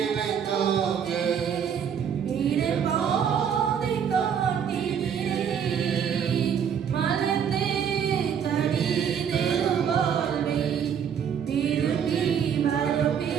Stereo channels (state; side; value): quieter; left; 7.9 dB